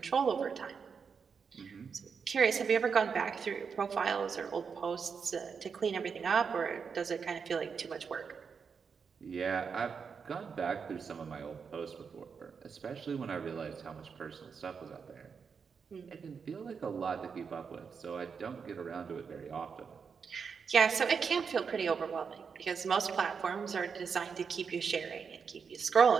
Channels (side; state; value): left; quieter; 6.0 dB